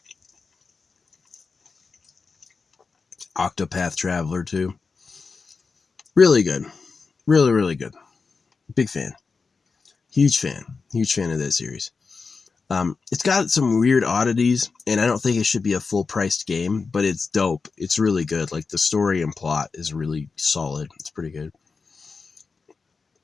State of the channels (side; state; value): right; quieter; 4.7 dB